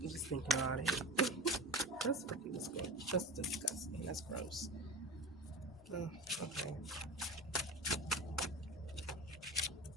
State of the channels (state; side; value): normal; both; correlation 0.31